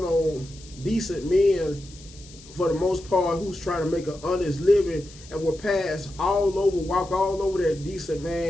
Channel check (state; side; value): noise; left; hiss, 21 dB below the sound